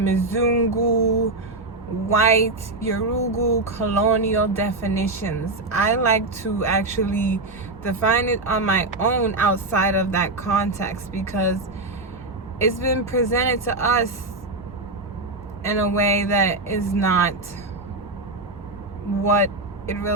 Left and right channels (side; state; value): left; quieter; 3.0 dB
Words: white, Yorugu, colonial definitions. I like to actually define it on my own outside of that context, because it's been presented to us in a way that is not what it